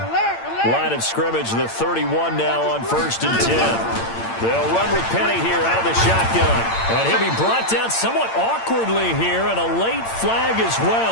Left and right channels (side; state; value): right; late; 8.8 ms